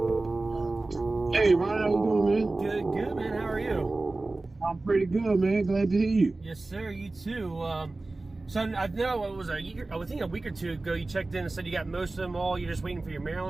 Ryan, how you doing, man? Good, man. How are you? I'm pretty good, man. Glad to hear you. Yes, sir. You too. So I know it was I think a week or two ago you checked in and said you got most of them all. You're just waiting for your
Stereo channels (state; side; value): quieter; left; 3.2 dB